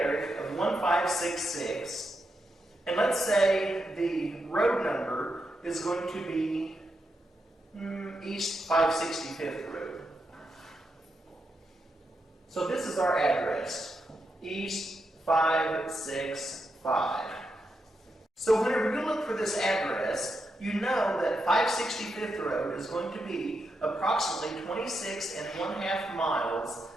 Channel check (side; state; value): both; normal; correlation 0.84